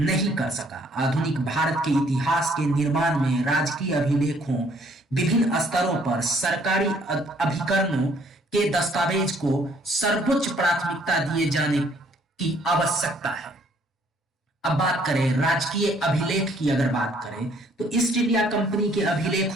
कर सका। आधुनिक भारत के इतिहास के निर्माण में राजकीय अभिलेखों, विभिन्न स्तरों पर सरकारी अभिकरणों के दस्तावेज को सर्वोच्च प्राथमिकता दिए जाने की आवश्यकता है। अब बात करें राजकीय अभिलेख की, अगर बात करें तो ईस्ट इंडिया कंपनी के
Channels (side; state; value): both; normal; correlation 0.63